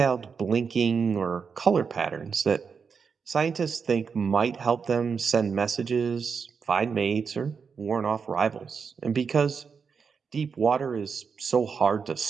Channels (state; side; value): quieter; left; 5.8 dB